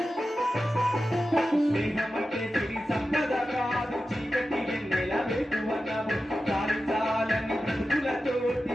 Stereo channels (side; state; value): both; normal; correlation 0.93